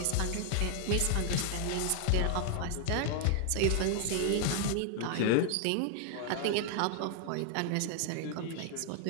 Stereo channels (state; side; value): different; both; correlation 0.00